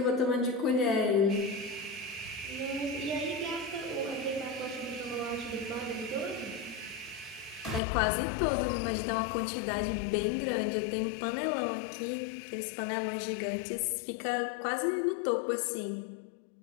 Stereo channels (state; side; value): drops out; right; at 7.8 s